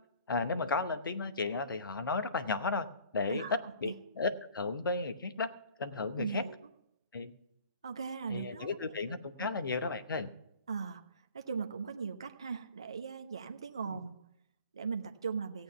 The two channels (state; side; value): inverted; both; correlation -0.49